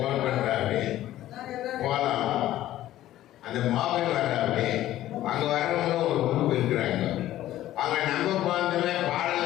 பண்ணுறாப்பி. போகலாம். அந்த மோகன் வர்றாப்பி. அங்கே வரவங்களும் ஒரு குரூப் இருக்கிறாங்க. அங்கே நம்ம போனதுமே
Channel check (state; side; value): quieter; right; 13.9 dB